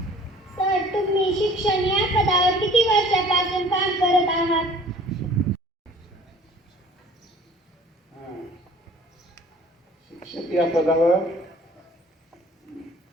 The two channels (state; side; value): normal; both; correlation 0.50